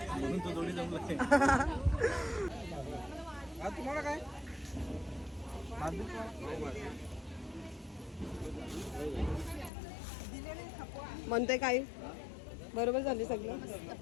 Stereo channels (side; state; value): right; drops out; at 9.7 s